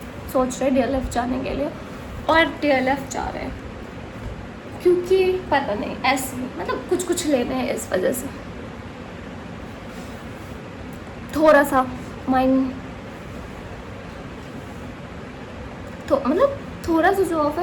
सोच रहे DLF जाने के लिए, और DLF जा रहे हैं क्योंकि पता नहीं ऐसे मतलब कुछ लेने हैं. इस वजह से थोड़ा सा माइंड तो मतलब थोड़ा सा जो ऑफ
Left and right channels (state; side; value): identical; both; correlation 1.00